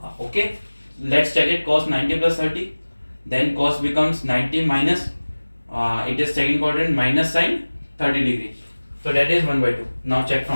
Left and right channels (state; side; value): inverted; both; correlation -1.00